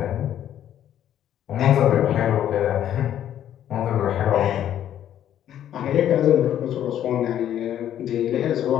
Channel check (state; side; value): quieter; right; 10.9 dB